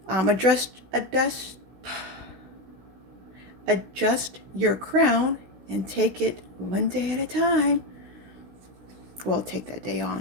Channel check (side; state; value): left; late; 16 ms